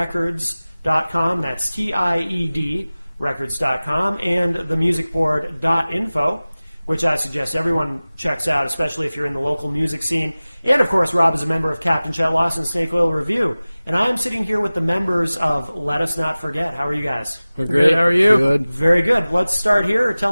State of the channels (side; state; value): both; inverted; correlation -0.98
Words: That's TIED records.com, and themusicboard.info, which I suggest everyone checks out, especially if you're in the local music scene. And, of course, Rob is a member of Captain Chet Lawson's Snake Oil Review. And I am sitting here with the members of Let Us Not Forget. How are you guys? We're great. How are you? Good. Very good. Let's start here. Tell